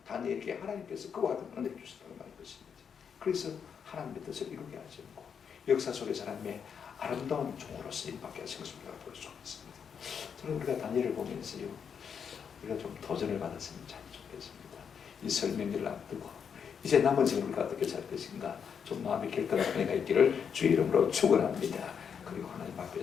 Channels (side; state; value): right; quieter; 7.1 dB